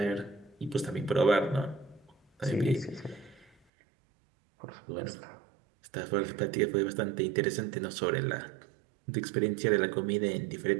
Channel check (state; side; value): drops out; left; at 3.5 s